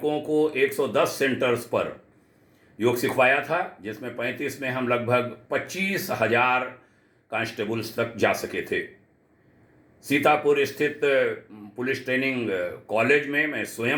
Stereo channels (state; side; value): identical; both; correlation 1.00